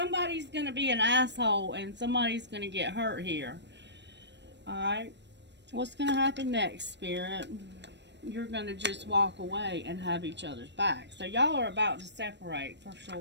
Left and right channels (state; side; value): late; left; 0.51 ms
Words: going to be an asshole and somebody's going to get hurt here. Alright, what's going to happen next, Spirit? You're going to just walk away and have each other's back. So y'all are about to separate for